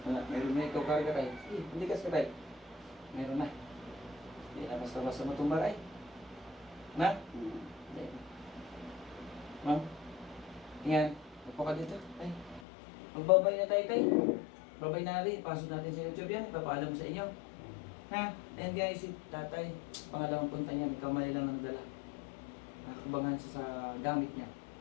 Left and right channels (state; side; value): drops out; right; at 12.6 s